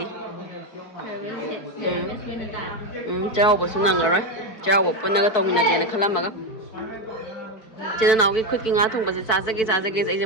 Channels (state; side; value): late; right; 4.5 ms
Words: chao basu nangaroi chao punaga tawminagena khalamaga Jena now gi khut ki nga thong base chajage ai